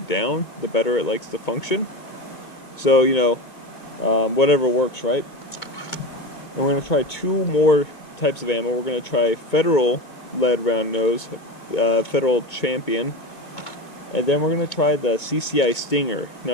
down, the better it likes to function. So, you know, whatever works, right? And we're going to try 2 more types of ammo. We're going to try Federal lead round nose, Federal Champion, and then we're going to try the CCI Stinger.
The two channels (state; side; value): late; right; 2.2 ms